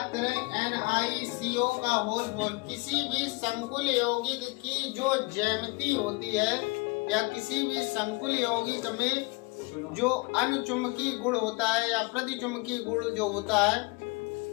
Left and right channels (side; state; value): right; quieter; 26.5 dB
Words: करें NiCO का होल 4, किसी भी संकुल यौगिक की जो ज्यामिति होती है या किसी भी संकुल यौगिक में जो अनुचुंबकीय गुण होता है या प्रतिचुंबकीय गुण जो होता है,